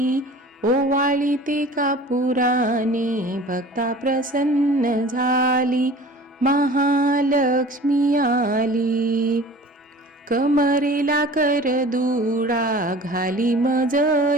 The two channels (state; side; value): normal; both; correlation 0.43